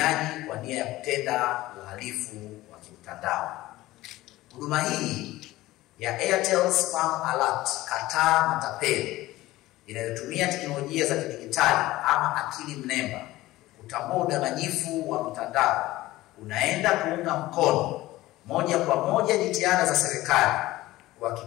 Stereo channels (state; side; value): quieter; right; 17.4 dB